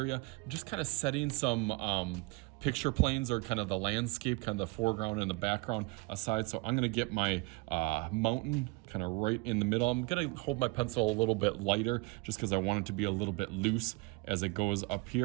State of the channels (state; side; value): quieter; left; 25.0 dB